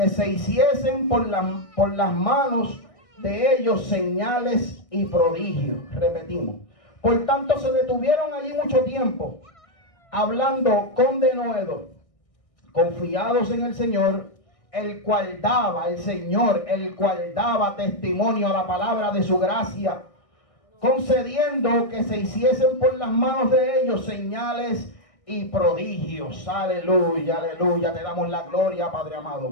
se hiciesen por las manos de ellos señales y prodigios. Repetimos. Por tanto, se detuvieron allí mucho tiempo, hablando con denuedo, confiados en el Señor, el cual daba testimonio a la palabra de su gracia, concediendo que se hiciesen por las manos de ellos señales y prodigios. Aleluya, aleluya. Te damos la gloria, Padre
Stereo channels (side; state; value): right; late; 1.6 ms